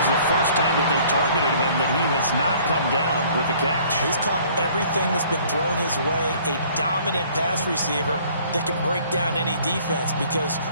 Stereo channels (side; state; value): both; inverted; correlation -0.56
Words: the first time that they've targeted him that he has not come down with a catch. He's caught everything that's been thrown his way. A dominant pass receiver that can break down any defense, because